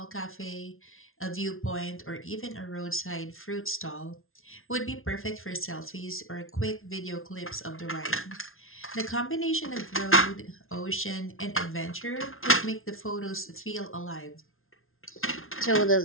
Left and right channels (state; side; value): late; right; 0.61 ms